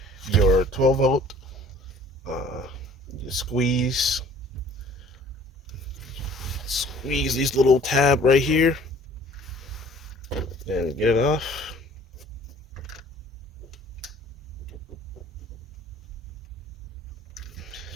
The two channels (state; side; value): normal; both; correlation 0.52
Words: your 12 volt. You squeeze these little tab right here, and get it off.